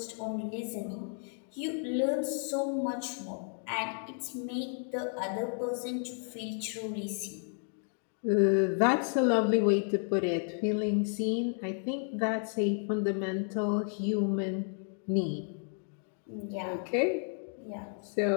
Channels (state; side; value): silent; right; 56 dB below the other